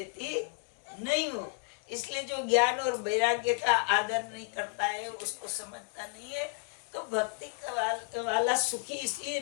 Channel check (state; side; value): quieter; right; 33.6 dB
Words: नहीं हूँ। इसलिए जो ज्ञान और वैराग्य का आदर नहीं करता है, उसको समझता नहीं है, तो भक्ति वाला सुखी इसलिए